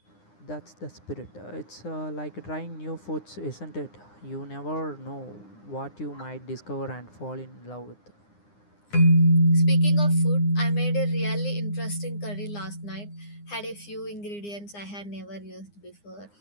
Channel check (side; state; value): right; late; 9.8 ms